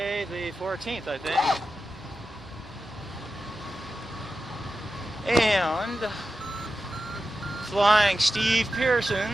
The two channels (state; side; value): normal; both; correlation 0.91